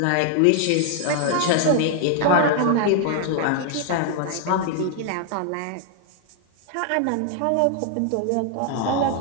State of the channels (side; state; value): both; different; correlation 0.00